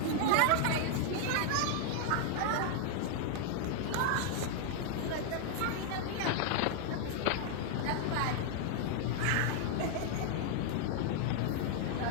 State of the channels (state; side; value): different; both; correlation 0.00